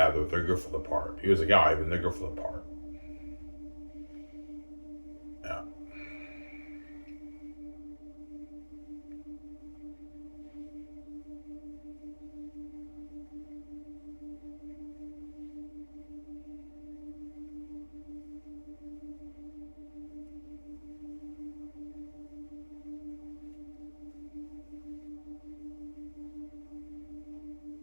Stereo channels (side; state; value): both; inverted; correlation -1.00